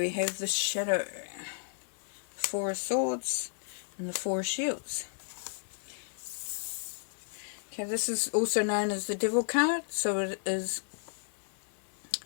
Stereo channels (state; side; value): silent; right; 56 dB below the other